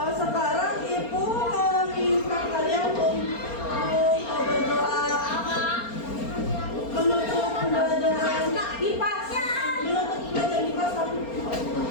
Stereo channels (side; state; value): right; late; 4.3 ms